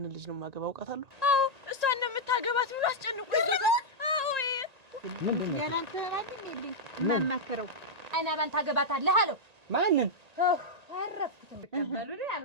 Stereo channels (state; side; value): late; left; 1.8 ms